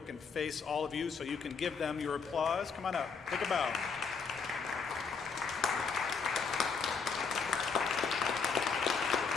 and face all of you so you can give them your applause. Come on up, take a bow.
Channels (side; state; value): right; quieter; 5.5 dB